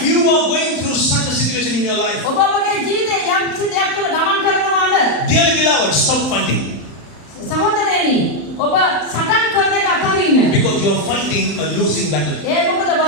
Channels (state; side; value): late; right; 35 ms